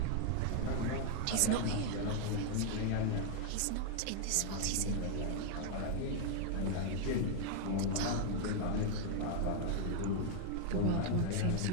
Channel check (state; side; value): different; both; correlation 0.00